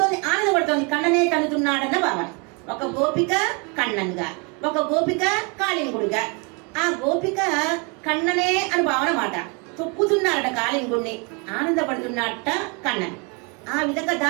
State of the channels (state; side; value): quieter; left; 32.8 dB